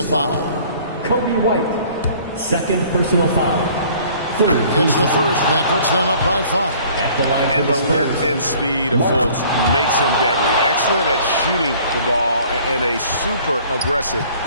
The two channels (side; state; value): both; inverted; correlation -0.53